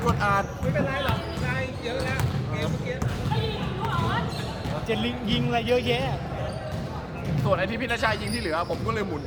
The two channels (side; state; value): both; identical; correlation 1.00